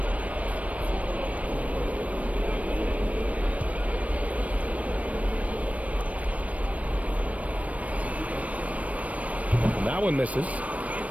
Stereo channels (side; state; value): left; late; 0.067 ms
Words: That one misses.